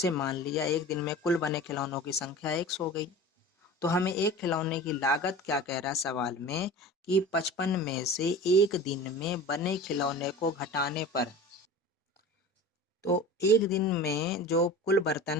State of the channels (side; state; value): both; normal; correlation 0.35